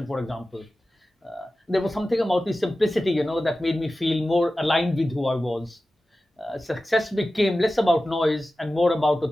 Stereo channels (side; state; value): both; normal; correlation 0.95